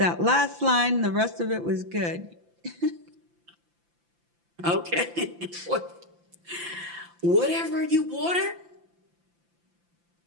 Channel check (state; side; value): late; left; 5.8 ms